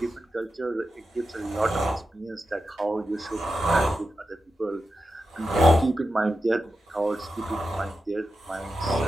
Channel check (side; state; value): both; normal; correlation 0.90